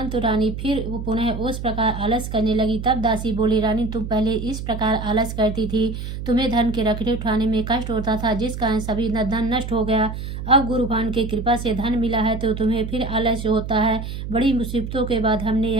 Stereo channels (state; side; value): noise; right; hum, 7 dB below the sound